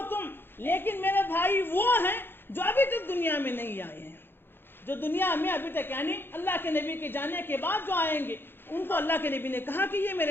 تم، لیکن میرے بھائی وہ ہیں جو ابھی تک دنیا میں نہیں آئے ہیں، جو دنیا میں ابھی تک یعنی اللہ کے نبی کے جانے کے بعد جو آئیں گے ان کو اللہ کے نبی نے کہا کہ یہ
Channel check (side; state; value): right; late; 0.10 ms